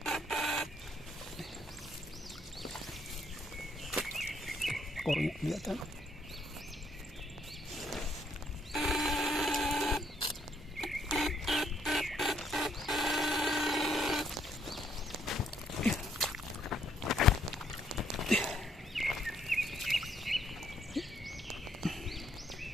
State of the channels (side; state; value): both; normal; correlation 0.70